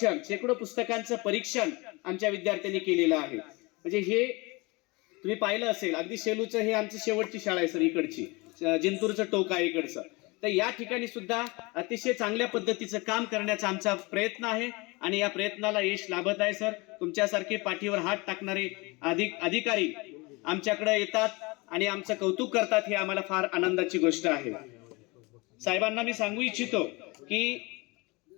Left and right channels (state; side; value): quieter; right; 25.7 dB